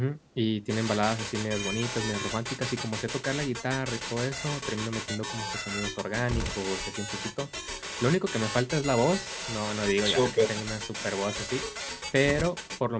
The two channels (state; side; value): identical; both; correlation 1.00